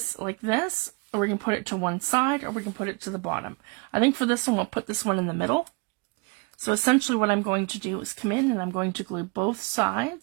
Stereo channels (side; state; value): left; quieter; 30.1 dB